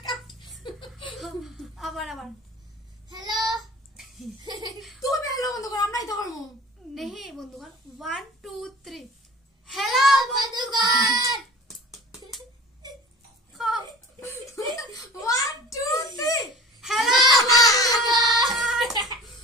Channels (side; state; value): both; normal; correlation 0.43